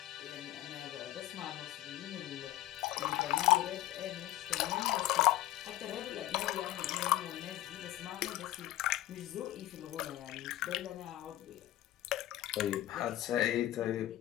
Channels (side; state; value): right; quieter; 14.9 dB